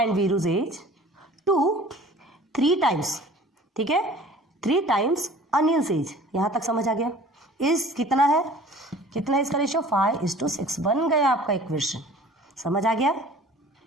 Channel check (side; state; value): both; normal; correlation 0.47